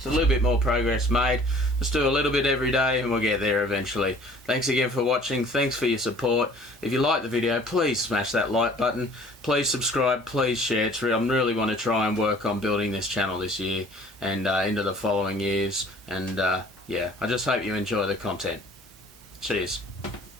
a little bit more progress made. Just do a little bit every day and we'll get there eventually. Thanks again for watching. Thanks for your support. If you like the video, please smash that like button. Please subscribe. Please share. I really want to try and work on building this channel this year and into the following years. And yeah, I just hope you enjoy the content. Cheers.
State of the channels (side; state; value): both; normal; correlation 0.52